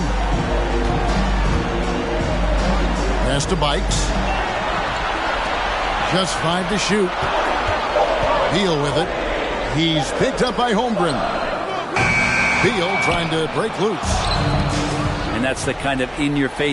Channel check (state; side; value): identical; both; correlation 1.00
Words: Pass to Bikes. Just 5 to shoot. Beal with it. He's picked up by Holmgren. Beal trying to break loose. And that's the kind of